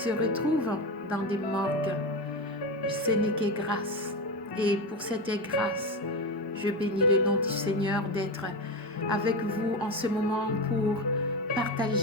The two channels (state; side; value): normal; both; correlation 0.18